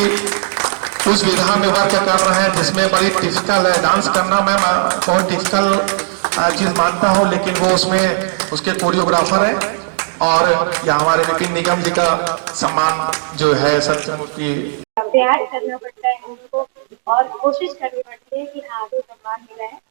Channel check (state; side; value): silent; left; digital silence